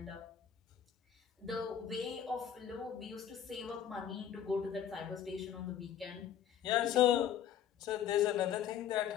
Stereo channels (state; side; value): quieter; right; 9.4 dB